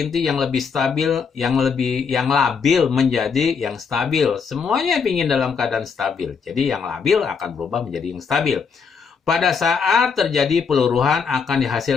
yang lebih stabil, yang labil menjadi yang stabil. Semuanya ingin dalam keadaan stabil. Jadi yang labil akan berubah menjadi yang stabil. Pada saat terjadi peluruhan akan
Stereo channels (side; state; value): right; quieter; 5.9 dB